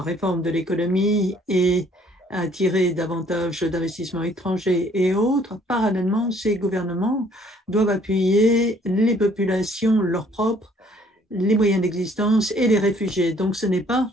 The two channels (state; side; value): normal; both; correlation 0.61